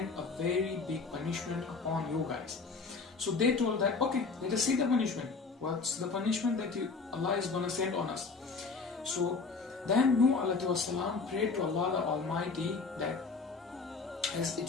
a very big punishment upon you guys. So they told that, okay, let us see the punishment. What's the punishment that Allah is going to send on us? So then Nuh alayhi salam prayed to Allah the Almighty that as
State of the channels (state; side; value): quieter; right; 4.5 dB